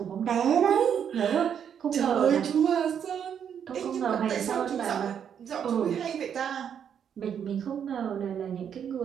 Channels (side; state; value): left; quieter; 8.3 dB